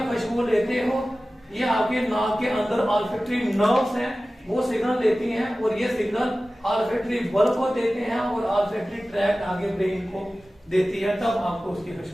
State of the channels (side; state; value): both; normal; correlation 0.96